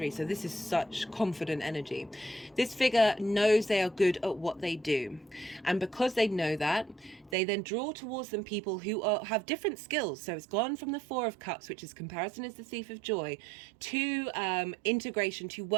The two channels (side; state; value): left; drops out; at 7.4 s